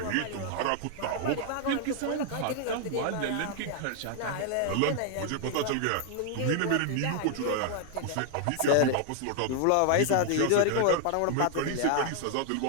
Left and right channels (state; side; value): different; both; correlation 0.00